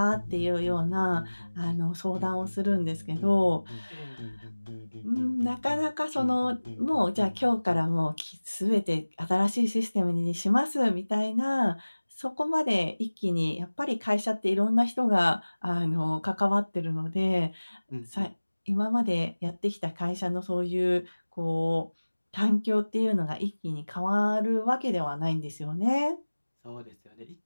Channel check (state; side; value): inverted; both; correlation -1.00